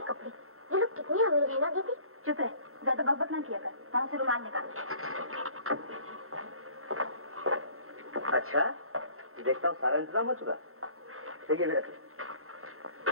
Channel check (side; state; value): left; late; 0.62 ms